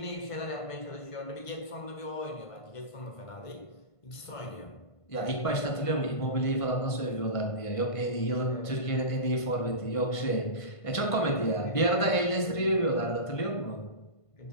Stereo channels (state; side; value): late; right; 1.5 ms